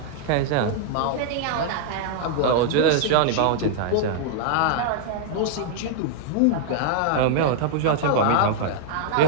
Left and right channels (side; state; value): both; different; correlation -0.01